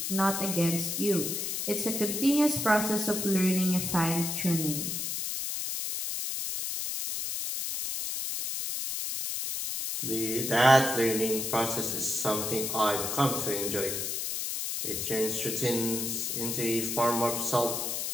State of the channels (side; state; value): left; noise; hiss, 2 dB below the sound